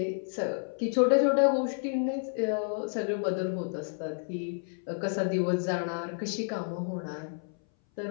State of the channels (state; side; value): silent; right; 58 dB below the other